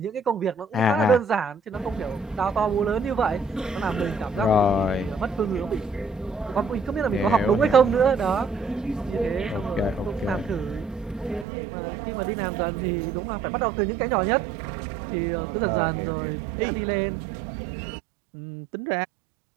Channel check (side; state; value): left; drops out; at 11.5 s